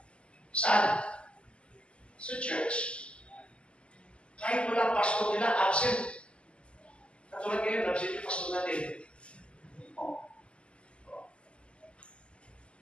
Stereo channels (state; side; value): late; right; 0.054 ms